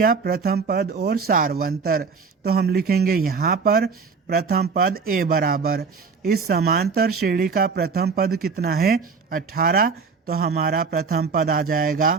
प्रथम पद और सारवंतर। तो हम लिखेंगे यहाँ पर प्रथम पद ए बराबर, इस समांतर श्रेणी का प्रथम पद कितना है? 18। तो हमारा प्रथम पद आ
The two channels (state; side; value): quieter; left; 5.2 dB